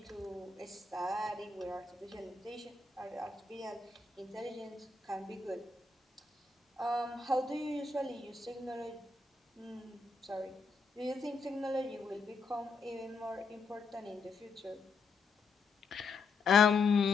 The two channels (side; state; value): right; quieter; 4.3 dB